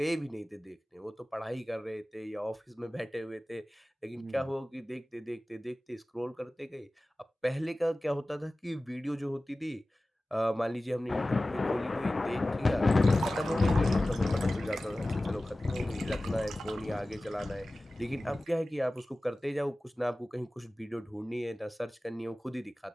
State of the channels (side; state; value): both; normal; correlation 0.97